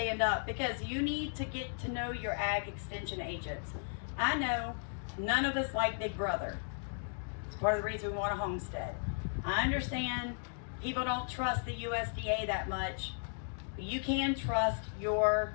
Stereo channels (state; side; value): silent; right; digital silence